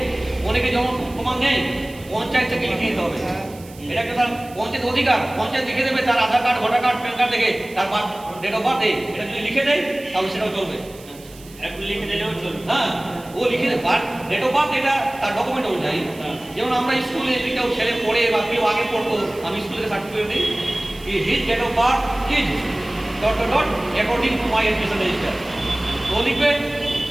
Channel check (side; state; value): right; noise; hiss, 21 dB below the sound